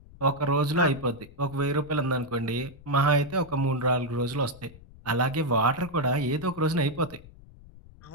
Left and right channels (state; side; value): noise; left; rumble, 21 dB below the sound